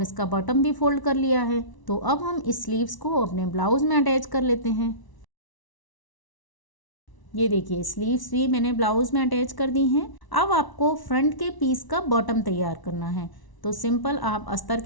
इसका बॉटम भी फोल्ड कर लिया है। तो अब हम इस स्लीव्स को अपने ब्लाउज में अटैच कर लेते हैं। ये देखिए स्लीव्स भी मैंने ब्लाउज में अटैच कर दी हैं। अब आपको फ्रंट के पीस का बॉटम तैयार करना है। तो सिंपल आप अस्तर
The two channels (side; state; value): right; late; 1.0 ms